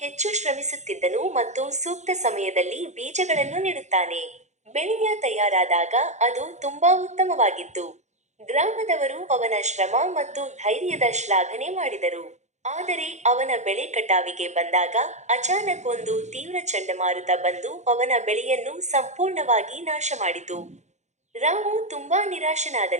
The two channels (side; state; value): left; late; 0.33 ms